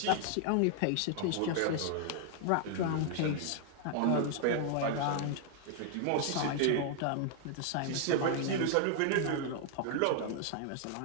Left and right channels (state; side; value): different; both; correlation 0.00